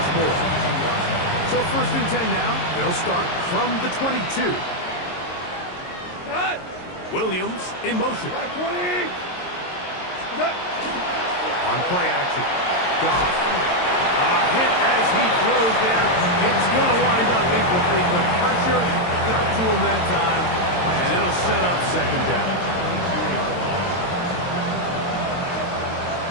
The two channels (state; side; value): late; right; 22 ms